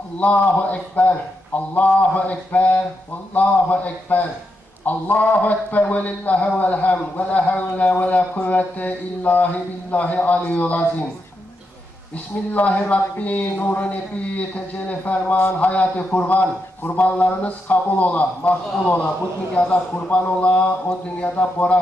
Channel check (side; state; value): both; normal; correlation 0.84